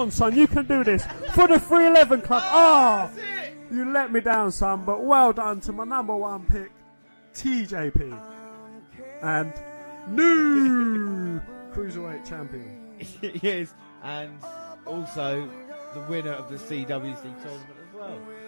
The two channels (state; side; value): inverted; both; correlation -1.00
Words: son, you can do this. For the 311 Club. Oh, you let me down, son, but well done to my number one pick, TJP. And new Cruiserweight Champion. Yes, and also the winner of the CWC tournament as well.